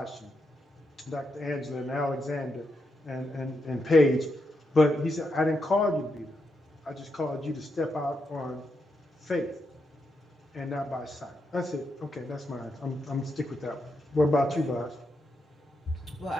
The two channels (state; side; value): normal; both; correlation 0.83